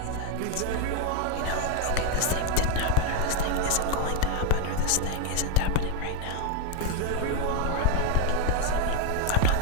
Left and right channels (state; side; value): different; both; correlation 0.01